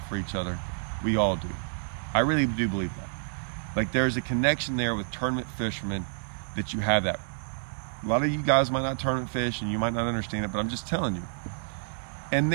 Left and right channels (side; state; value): left; silent; 59 dB below the other